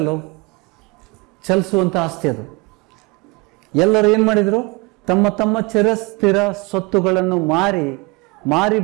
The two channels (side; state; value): left; quieter; 27.2 dB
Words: ಚಲಿಸುವಂಥ ಆಸ್ತಿ ಅದು. ಎಲ್ಲರೂ ಏನು ಮಾಡಿದರು? ತಮ್ಮ ತಮ್ಮ ಚಿರಸ್ಥಿರ ಸ್ವತ್ತುಗಳನ್ನು ಮಾರಿ